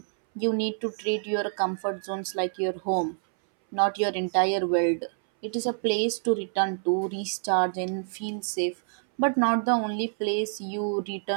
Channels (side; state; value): left; silent; 60 dB below the other